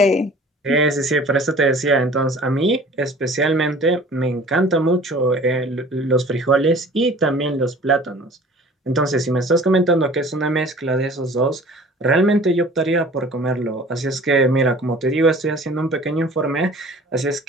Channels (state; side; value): normal; both; correlation 0.47